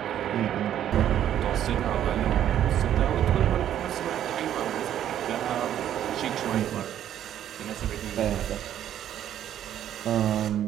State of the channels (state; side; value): quieter; left; 10.8 dB